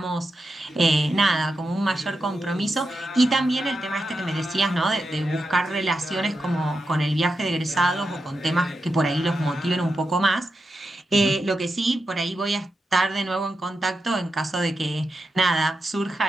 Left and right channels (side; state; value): both; normal; correlation 0.88